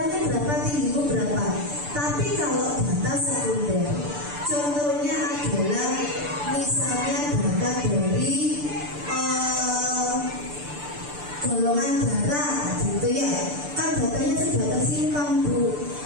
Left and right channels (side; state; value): left; late; 6.8 ms